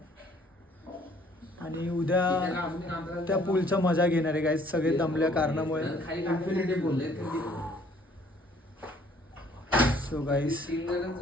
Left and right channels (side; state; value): both; normal; correlation 0.60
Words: आणि उद्या त्या पूलचा मजा घेणार आहे गाईज, सगळे दमल्या कारणामुळे. सो गाईज